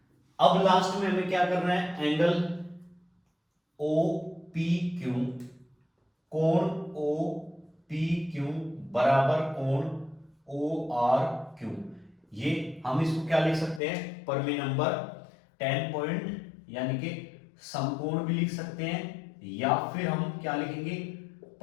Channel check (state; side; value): drops out; right; at 13.8 s